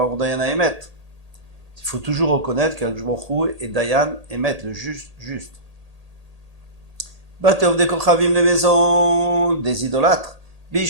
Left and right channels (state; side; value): late; left; 1.8 ms